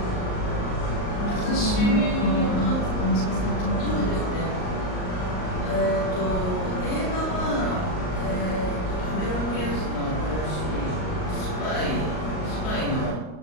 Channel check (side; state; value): right; late; 38 ms